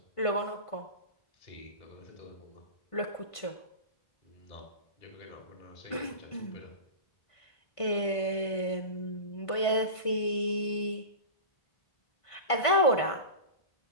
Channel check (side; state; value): right; late; 1.5 ms